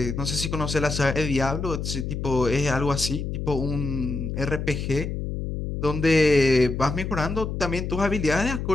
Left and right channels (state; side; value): noise; left; hum, 4 dB below the sound